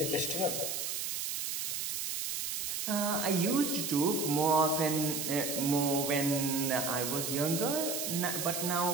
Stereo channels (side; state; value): right; noise; hiss, 2 dB below the sound